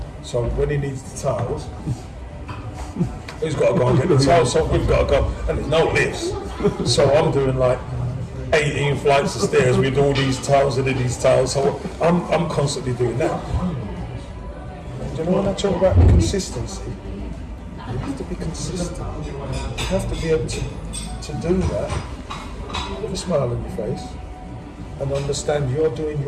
So when he needs the tiles, he's got to go and get the tiles, so we've got to go, and there's no lifts. So I'm doing 18 flights of stairs with all these tiles and these tiles, so I'm constantly doing that. Do you know when I talk about consistency? You have to be consistent. You have to be able to do that with a smile on your face and understand you're doing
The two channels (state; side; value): identical; both; correlation 1.00